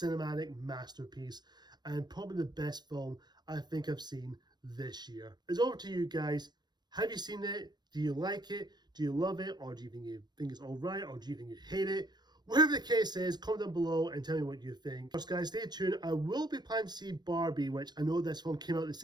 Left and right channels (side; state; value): left; late; 0.21 ms